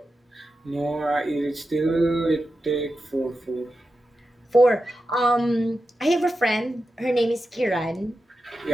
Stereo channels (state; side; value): normal; both; correlation 0.91